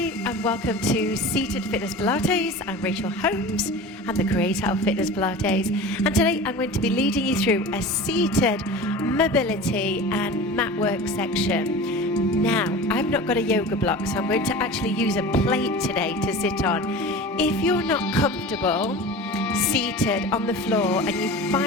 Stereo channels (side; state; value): both; normal; correlation 0.34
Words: and welcome to Seated Fitness Pilates. I'm Rachel Holmes, I'm the creator of Fitness Pilates, and today I'm going to be leading you through a seated mobility and mat work section. Now, I've not got a yoga block, so I'm going to actually use a plate today to sit on. If you're not comfortable seated on the floor and you